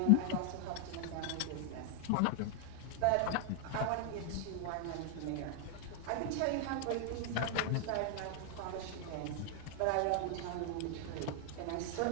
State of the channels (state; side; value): different; both; correlation 0.00